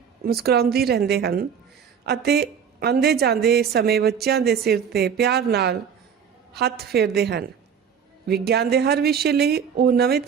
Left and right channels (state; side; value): quieter; left; 7.4 dB